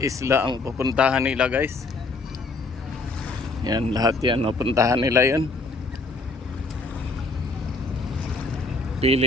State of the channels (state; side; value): quieter; right; 3.4 dB